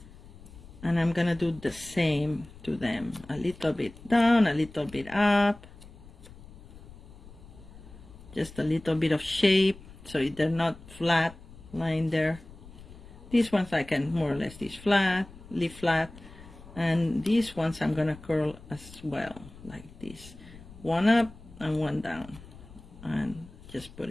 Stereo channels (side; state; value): left; noise; rumble, 19 dB below the sound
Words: and I'm gonna do the same to them. A little bit down, a little bit up, just a little bit of shape, so they're not flat lying there. These ones I can more or less leave flat, and these ones I'm gonna curl as well, like this. One up and one down, and just put